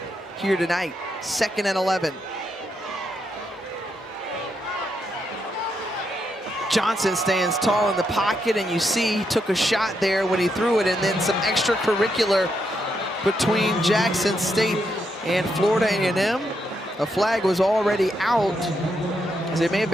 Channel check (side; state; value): both; normal; correlation 0.80